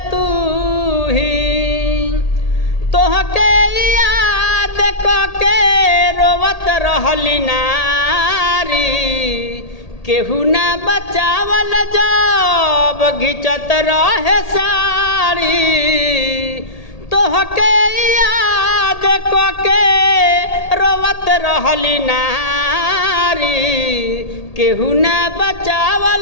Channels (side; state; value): right; late; 1.8 ms